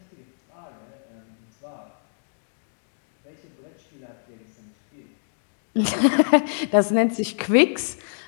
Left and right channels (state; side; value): silent; right; digital silence